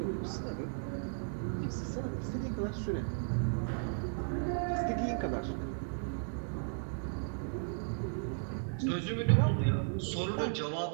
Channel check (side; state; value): left; silent; digital silence